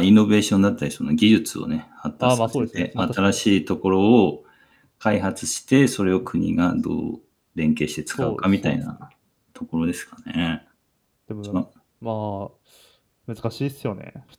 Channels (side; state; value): both; identical; correlation 1.00